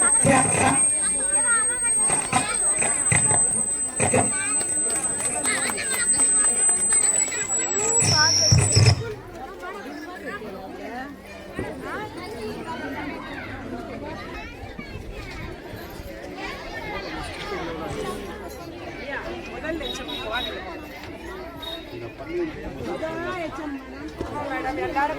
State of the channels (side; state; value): both; identical; correlation 1.00